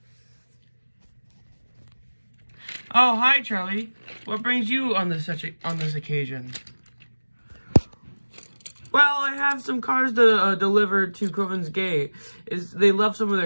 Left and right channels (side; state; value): both; inverted; correlation -1.00